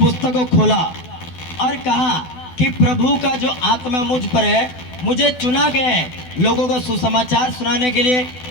को खोला और कहा कि प्रभु का जो आत्मा मुझ पर है, मुझे चुना गया है लोगों को सुसमाचार सुनाने के लिए,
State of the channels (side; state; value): right; late; 12 ms